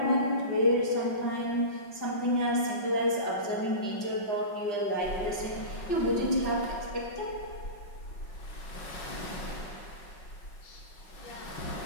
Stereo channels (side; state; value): right; late; 5.5 ms